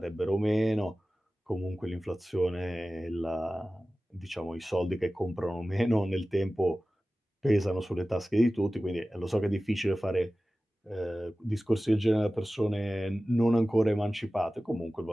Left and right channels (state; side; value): normal; both; correlation 0.96